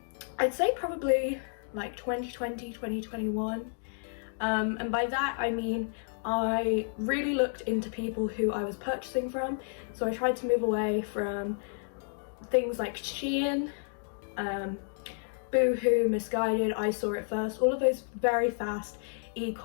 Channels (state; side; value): silent; right; digital silence